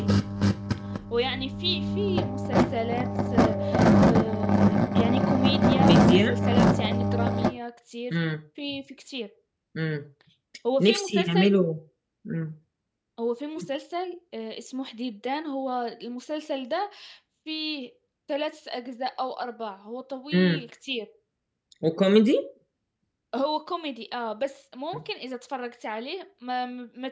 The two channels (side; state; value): both; identical; correlation 1.00